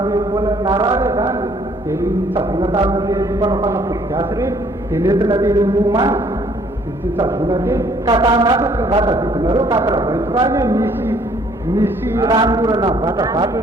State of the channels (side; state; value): both; normal; correlation 0.62